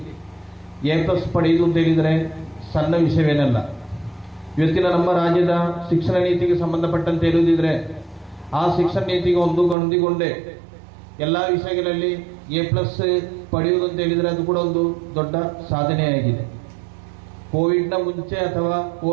A+ ಪಡೆಯುವುದು ಅಂತ ಹೇಳಿದರೆ ಸಣ್ಣ ವಿಷಯವೇನಲ್ಲ. ಇವತ್ತಿನ ನಮ್ಮ ರಾಜ್ಯದ ಶಿಕ್ಷಣ ನೀತಿಗೆ ಸಂಬಂಧಪಟ್ಟಂತೆ ಹೇಳುವುದಿದ್ರೆ ಆ ಶಿಕ್ಷಣ ನೀತಿಗೆ ಹೊಂದಿಕೊಂಡೇ ಎಲ್ಲ ವಿಷಯಗಳಲ್ಲಿ A+ ಪಡೆಯುವುದು ಅಂತ ಹೇಳಿದರೆ ಅದು ಕೂಡ ಒಂದು ದೊಡ್ಡ ಸಾಧನೆಯಾಗಿದೆ. ಕೋವಿಡ್ನ ಮುಂಚೆ ಅಥವಾ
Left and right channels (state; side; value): drops out; left; at 9.8 s